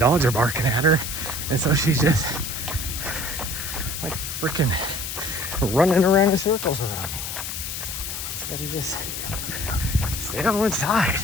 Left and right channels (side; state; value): left; noise; hiss, 5 dB below the sound